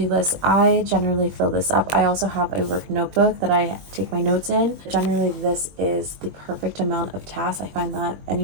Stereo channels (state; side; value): late; left; 21 ms